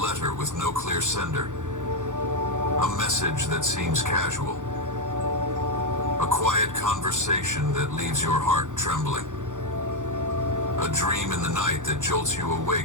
with no clear sender, a message that seems casual, a quiet conversation that leaves your heart trembling, a dream in the night that jolts you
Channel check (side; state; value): left; late; 0.86 ms